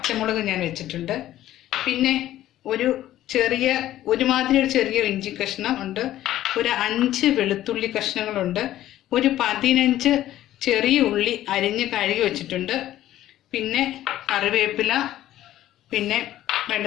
ഞാൻ വെച്ചിട്ടുണ്ട്. പിന്നെ ഒരുമാതിരി ഒരു ചെറിയ ഇഞ്ചി കഷ്ണം ഉണ്ട്. ഒരു 5 വെളുത്തുള്ളി കഷ്ണങ്ങളുണ്ട്. ഒരു 15 ചെറിയ ഉള്ളി അരിഞ്ഞ് കഴുകി വെച്ചിട്ടുണ്ട്. പിന്നെ കറിവേപ്പില, പിന്നെ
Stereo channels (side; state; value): right; quieter; 13.5 dB